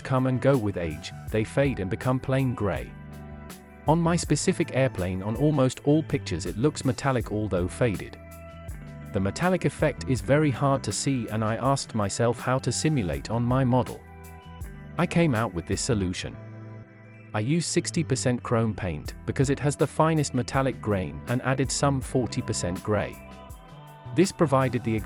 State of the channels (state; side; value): identical; both; correlation 1.00